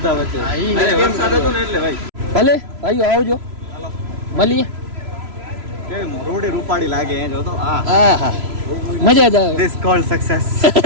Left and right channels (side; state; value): left; late; 3.0 ms